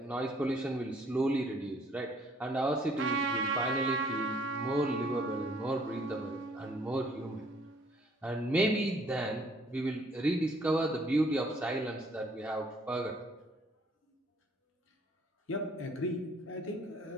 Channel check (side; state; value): both; normal; correlation 0.61